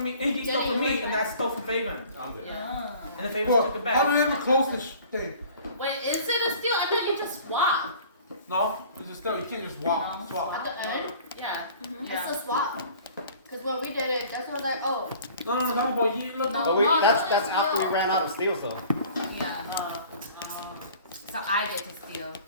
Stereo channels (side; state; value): both; inverted; correlation -0.48